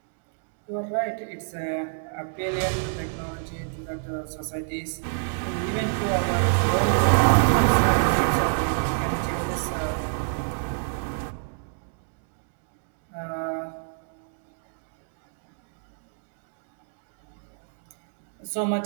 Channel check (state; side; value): silent; left; digital silence